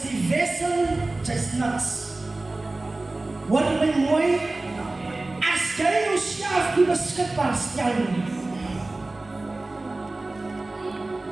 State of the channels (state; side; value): quieter; left; 3.0 dB